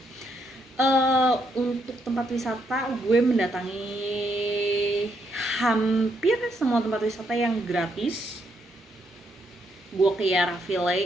Untuk tempat wisata gue mendatangi hampir semua tempat wisata yang gratis. Gue ke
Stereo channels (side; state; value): both; normal; correlation 0.76